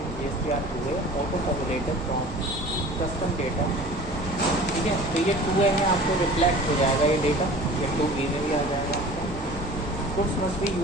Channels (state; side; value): normal; both; correlation 0.43